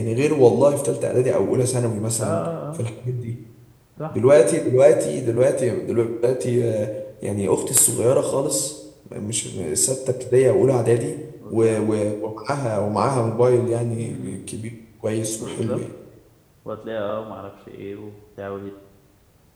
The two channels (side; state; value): both; identical; correlation 1.00